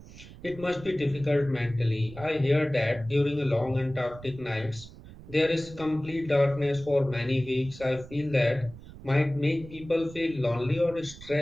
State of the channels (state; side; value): noise; right; rumble, 17 dB below the sound